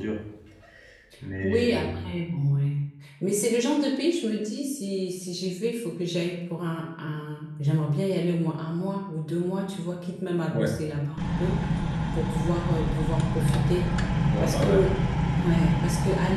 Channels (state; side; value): identical; both; correlation 1.00